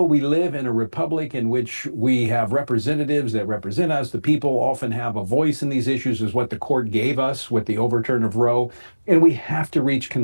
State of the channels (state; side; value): inverted; both; correlation -1.00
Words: we live in a republic in which we have representatives that represent us. The people often have a voice in these issues, is what the court gave us with the overturn of Roe. And we have to reach